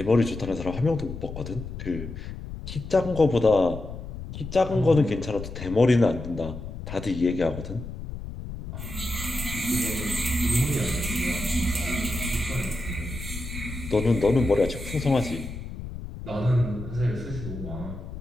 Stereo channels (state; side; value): noise; left; rumble, 10 dB below the sound